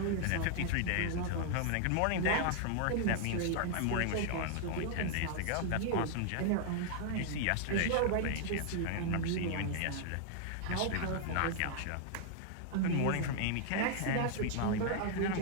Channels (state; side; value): different; both; correlation 0.00